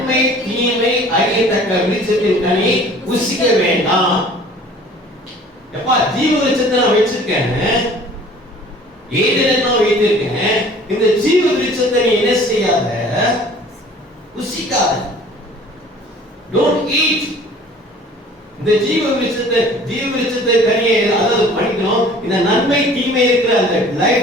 தீமை அறியத்தக்க விருட்சத்தின் கனியை புசிக்க வேண்டாம். எப்பா ஜீவ விருட்சத்தை நான் வச்சிருக்கேன், ஏதேனை நான் வைத்திருக்கேன், இந்த ஜீவ விருட்சத்தை நீ என்ன செய்யாத, புசிக்காத. Don't eat. இந்த ஜீவ விருட்சத்தை கனியை அதாவது படிக்கணும். இந்த நன்மை தீமை இருக்கிற அந்த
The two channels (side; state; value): both; normal; correlation 0.49